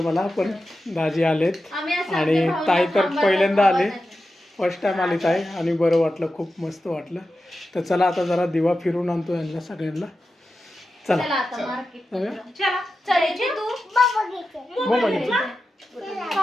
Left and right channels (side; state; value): both; normal; correlation 0.91